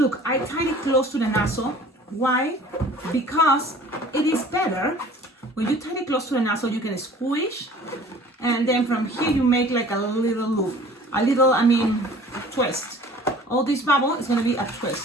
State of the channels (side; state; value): both; normal; correlation 0.48